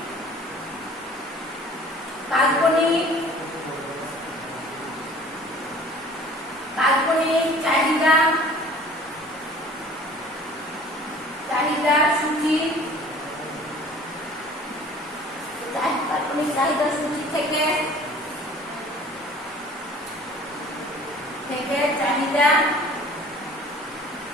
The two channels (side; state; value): both; normal; correlation 0.48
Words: কাল্পনিক চাহিদা সূচি থেকে চাহিদা